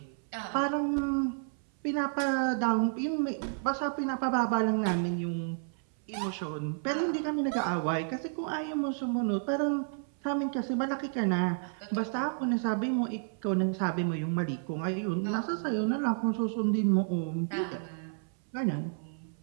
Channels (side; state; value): left; silent; 57 dB below the other